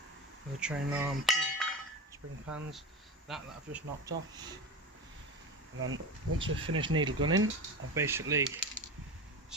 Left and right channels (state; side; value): normal; both; correlation 0.25